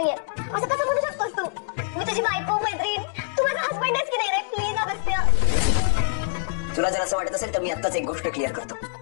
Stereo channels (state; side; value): silent; right; digital silence